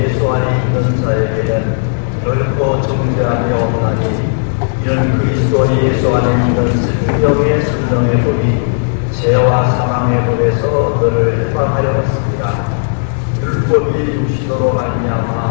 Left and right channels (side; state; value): right; silent; digital silence